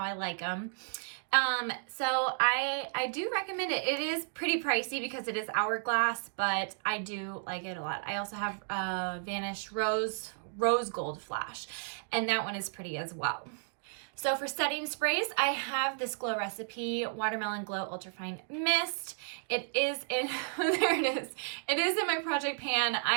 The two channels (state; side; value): silent; left; digital silence